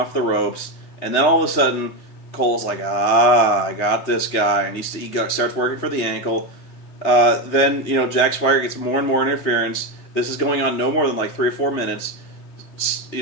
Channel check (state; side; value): late; right; 3.3 ms